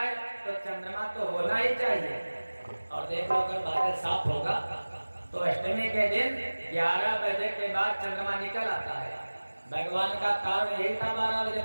तो चंद्रमा तो होना ही चाहिए। और देखो अगर बादल साफ होगा तो अष्टमी के दिन 11 बजे के बाद चंद्रमा निकल आता है। भगवान का कारण यही था 12 बजे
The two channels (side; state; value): both; inverted; correlation -1.00